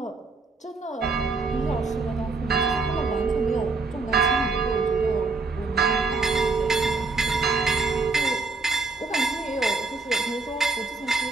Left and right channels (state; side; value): quieter; left; 3.9 dB